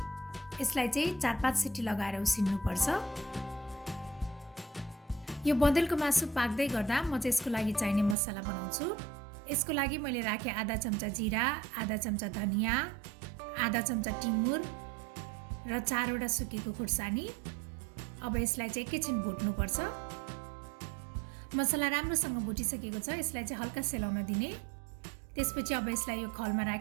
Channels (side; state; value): left; drops out; at 8.2 s